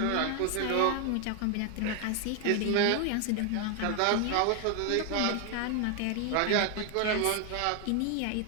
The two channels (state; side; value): different; both; correlation 0.00